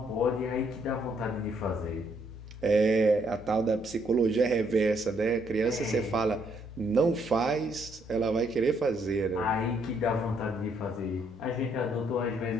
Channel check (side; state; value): both; normal; correlation 0.71